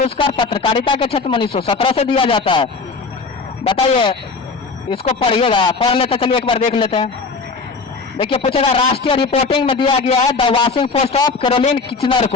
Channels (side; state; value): right; quieter; 4.4 dB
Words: पत्रकारिता के क्षेत्र में 1917 से दिया जाता है। बताइए इसको पढ़िएगा, पढ़ लेते चलिए एक बार देख लेते हैं। देखिए पूछेगा राष्ट्रीय रिपोर्टिंग में दिया गया है the Washington Post of Caroline Kitchener